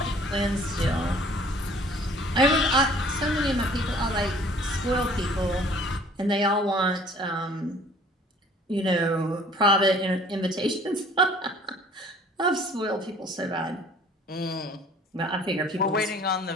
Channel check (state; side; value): normal; both; correlation 0.53